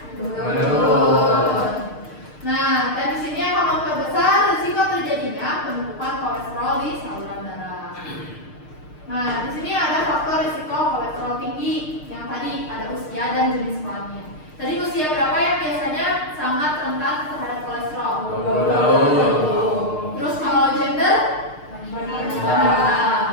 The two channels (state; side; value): late; right; 6.6 ms